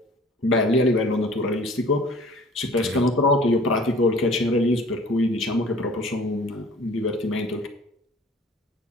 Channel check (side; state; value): both; normal; correlation 0.49